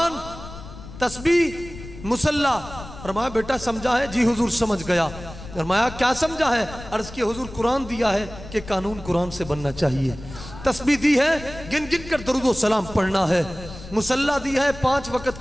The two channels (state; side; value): noise; left; rumble, 14 dB below the sound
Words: तस्बीह, मुसल्ला। फरमाया बेटा समझा है? जी हुजूर समझ गया। फरमाया क्या समझा है? अर्ज किया हुजूर कुरान दिया है कि कानून कुरान से बनना चाहिए, तस्बीह दी है गिन गिन कर दरूद व सलाम पढ़ना है, मुसल्ला दी है 5 वक्त